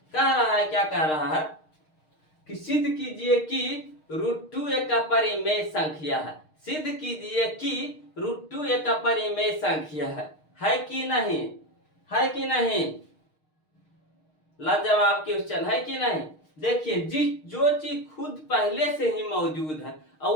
कह रहा है, क्या कह रहा है कि सिद्ध कीजिए कि √2 एक अपरिमेय संख्या है। सिद्ध कीजिए कि √2 एक अपरिमेय संख्या है कि नहीं? है कि नहीं? लाजवाब क्वेश्चन है कि नहीं? देखिए, जो चीज खुद पहले से ही मौजूद है और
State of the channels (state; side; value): late; right; 6.5 ms